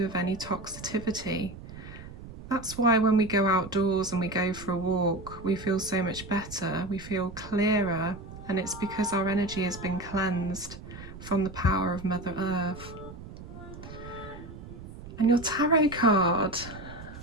of any toxicity. That's why when we go outdoors and we go for a walk, we feel so much better, we feel clearer, and it's because our energy has been cleansed from the power of Mother Earth. And your tarot card,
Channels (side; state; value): right; noise; rumble, 14 dB below the sound